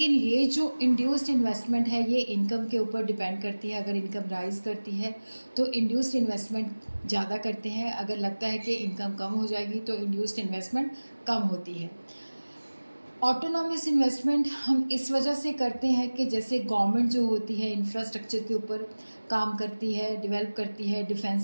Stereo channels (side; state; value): both; inverted; correlation -1.00